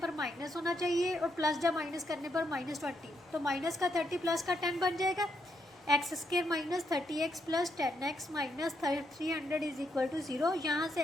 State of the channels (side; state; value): both; normal; correlation 0.78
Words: माइनस होना चाहिए, और प्लस जब माइनस करने पर -20, तो माइनस का 30 प्लस का 10 बन जाएगा, x² minus 30x plus 10x minus 300 is equal to 0। यहाँ